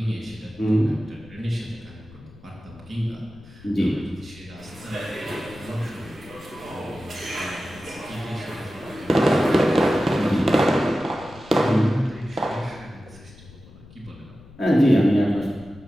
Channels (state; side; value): noise; left; rumble, 21 dB below the sound